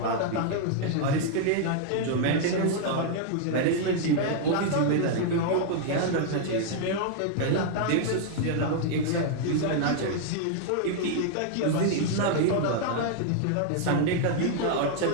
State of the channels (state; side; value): different; both; correlation 0.00